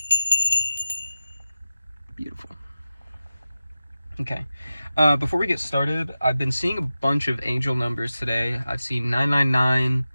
Beautiful. Okay. Before we get started, I've been seeing a bunch of angel numbers today. I've seen 999,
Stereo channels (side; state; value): both; inverted; correlation -0.95